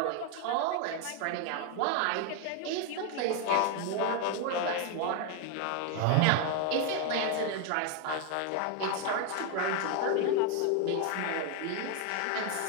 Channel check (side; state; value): both; different; correlation 0.01